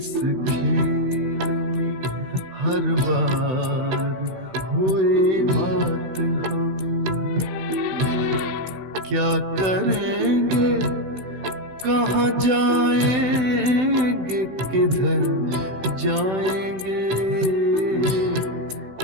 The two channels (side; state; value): left; late; 16 ms